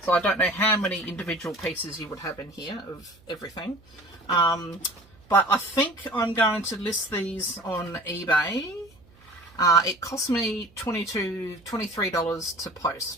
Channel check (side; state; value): right; noise; hum, 28 dB below the sound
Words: So I don't know how many individual pieces you would have in here of everything. But I think I'm going to list these on eBay. It cost me $23 to